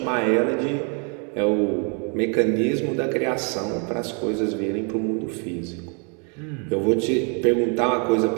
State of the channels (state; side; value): quieter; left; 37.2 dB